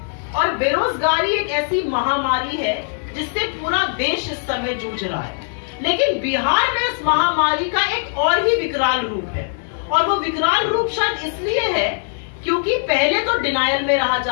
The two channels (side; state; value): right; silent; digital silence